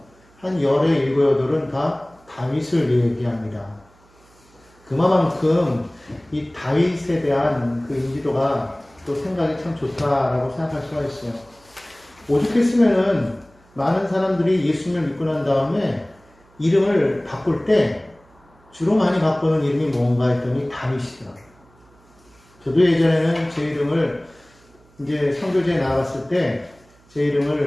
한 열의 일곱 여덟은 다 다윗을 얘기합니다. 그만큼 이 다윗에 대한 그 인지도가 또 생각이 참 좋다라고 생각할 수가 있어요. 오죽했으면은 많은 사람들이 예수님을 믿고 난 다음에 이름을 바꿀 때 주로 많이 바꾸는 이름이 뭔가 했더니 다윗이더라고요. 저도 예전에는 제 이름을 이제 선교제에 나갔을 때 제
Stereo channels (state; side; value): noise; right; hum, 30 dB below the sound